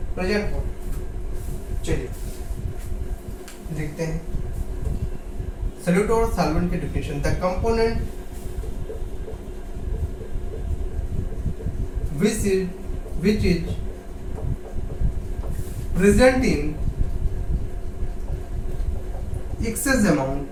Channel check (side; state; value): both; identical; correlation 1.00